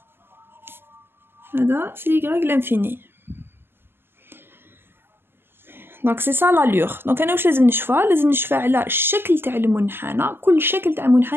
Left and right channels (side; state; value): left; late; 0.11 ms